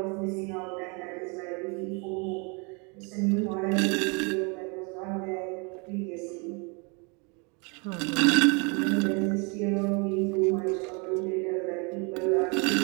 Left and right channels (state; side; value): quieter; left; 32.4 dB